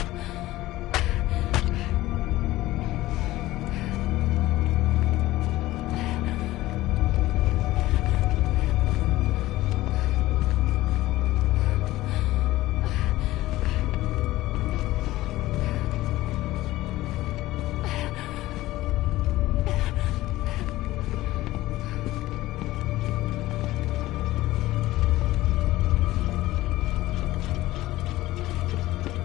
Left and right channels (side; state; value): right; quieter; 17.0 dB